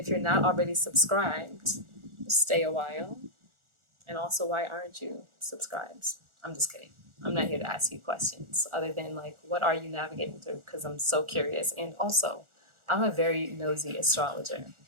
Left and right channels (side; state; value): left; late; 1.4 ms